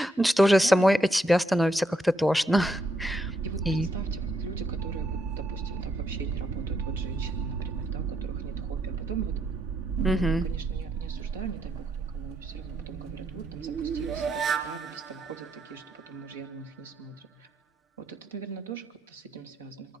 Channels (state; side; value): normal; both; correlation 0.77